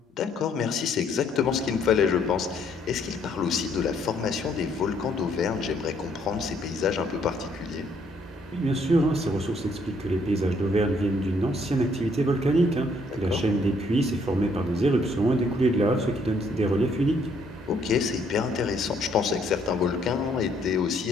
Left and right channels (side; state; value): both; normal; correlation 0.67